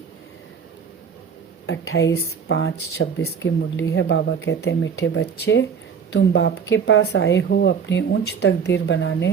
28/5/26 की मुरली है। बाबा कहते हैं, मीठे बच्चे, तुम बाप के पास आए हो अपनी ऊंच तकदीर बनाने।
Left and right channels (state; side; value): quieter; left; 6.6 dB